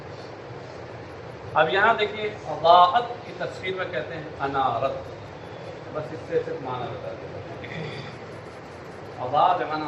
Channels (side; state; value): both; identical; correlation 1.00